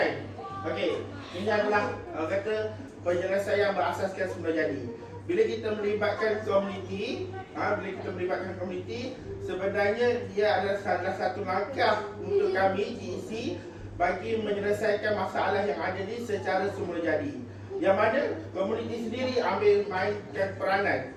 Okey, ini adalah kata penjelasan yang berasaskan semula jadi. Bila kita melibatkan komuniti, sebenarnya dia adalah salah satu langkah untuk kami GEC bagi menyelesaikan masalah yang ada ni secara semula jadi. Yang mana komuniti sendiri ambil mainkan peranan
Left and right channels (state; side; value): identical; both; correlation 1.00